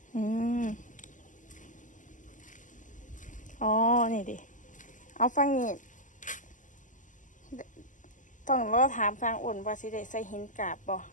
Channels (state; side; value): late; right; 0.37 ms